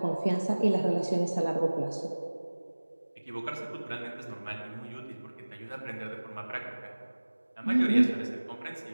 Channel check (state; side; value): inverted; both; correlation -1.00